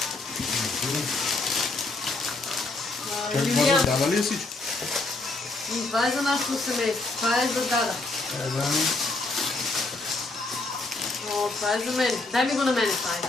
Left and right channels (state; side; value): quieter; right; 3.2 dB